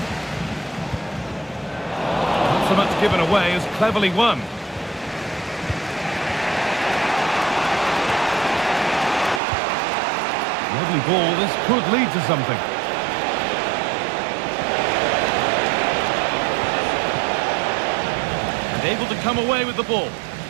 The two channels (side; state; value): left; drops out; at 9.4 s